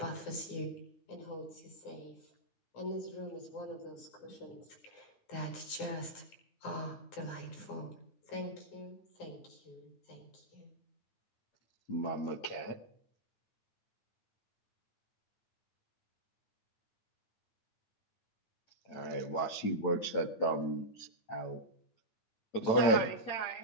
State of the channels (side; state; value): right; late; 8.9 ms